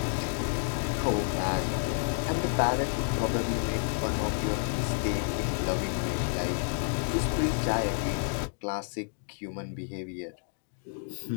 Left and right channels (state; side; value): silent; right; digital silence